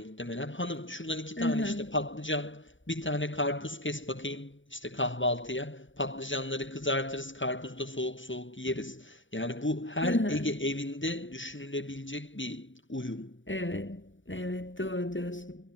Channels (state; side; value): late; right; 0.56 ms